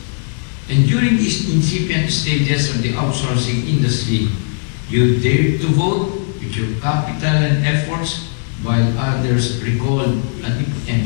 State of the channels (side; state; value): right; silent; 62 dB below the other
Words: And during these incipient stages of the outsourcing industry, you dared to vote with your capital and efforts, while others recalled at the